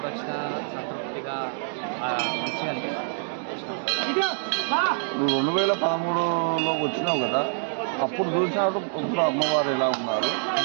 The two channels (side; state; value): left; silent; digital silence